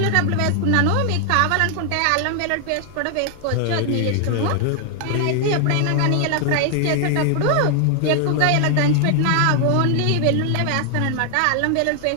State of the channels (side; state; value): both; different; correlation 0.00